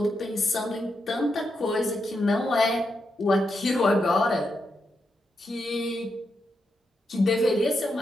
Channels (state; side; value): normal; both; correlation 0.84